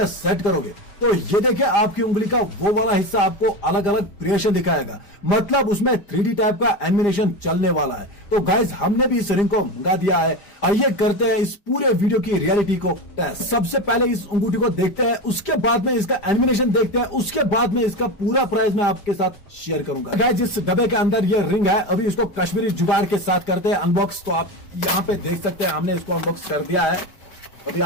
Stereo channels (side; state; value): right; late; 5.0 ms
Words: सेट करोगे तो ये देखिए आपकी उंगली का वो वाला हिस्सा आपको अलग अलग क्रिएशन दिखाएगा। मतलब उसमें 3D टाइप का एनिमेशन चलने वाला है। तो गाइज हमने भी इस रिंग को मंगा दिया है। आइए करते हैं इस पूरे वीडियो की रियलिटी को टेस्ट। सबसे पहले इस अंगूठी को देखते हैं, उसके बाद में इसका एनिमेशन देखते हैं, उसके बाद में इसका पूरा प्राइस मैं आपके साथ शेयर करूंगा। गाइज इस डब्बे के अंदर ये रिंग है, अभी इसको कश्मीरी जुगाड़ के साथ करते हैं अनबॉक्स। तो आप यहाँ पे देख सकते हैं हमने इसको अनबॉक्स कर दिया है। अभी